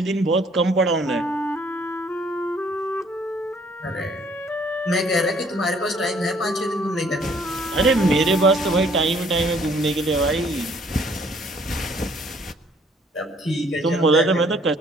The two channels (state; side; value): normal; both; correlation 0.61